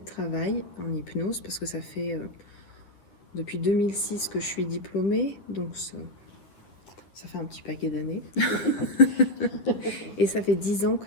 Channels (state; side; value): late; right; 10 ms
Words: travail en hypnose, parce que ça fait depuis 2006 que je suis diplômée, donc ça fait un petit paquet d'années. Et ça fait 10 ans